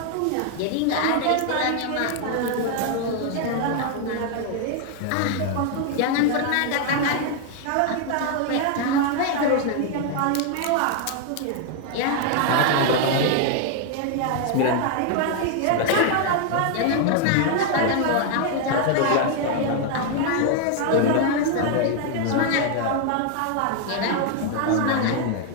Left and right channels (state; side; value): different; both; correlation 0.00